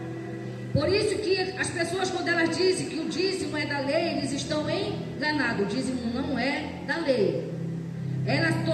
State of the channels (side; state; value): both; identical; correlation 1.00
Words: Por isso que as pessoas, quando elas dizem que o dízimo é da lei, eles estão enganados. O dízimo não é da lei. Ela